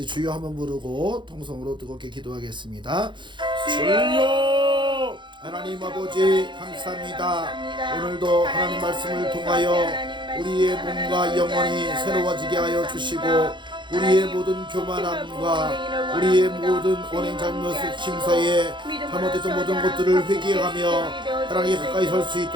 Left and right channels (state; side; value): late; left; 0.23 ms